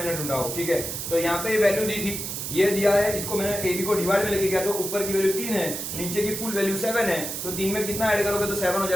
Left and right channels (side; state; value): right; noise; hiss, 5 dB below the sound